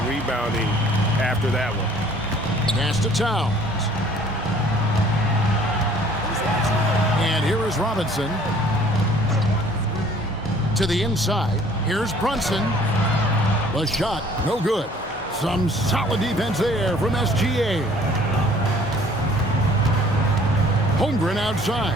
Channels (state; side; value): normal; both; correlation 0.55